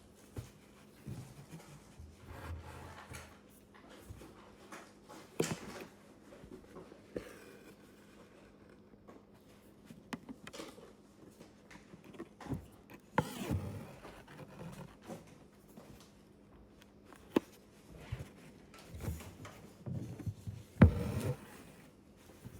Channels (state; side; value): identical; both; correlation 1.00